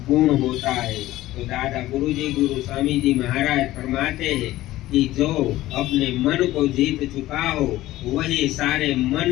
गुण होता है। तो दादा गुरुजी गुरु स्वामी जी महाराज फरमाते हैं कि जो अपने मन को जीत चुका हो वही सारे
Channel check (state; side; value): quieter; right; 15.9 dB